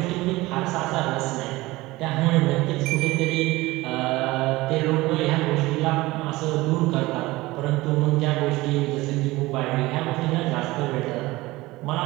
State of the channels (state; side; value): quieter; left; 19.8 dB